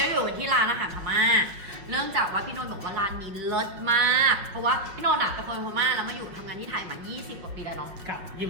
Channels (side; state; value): left; late; 5.6 ms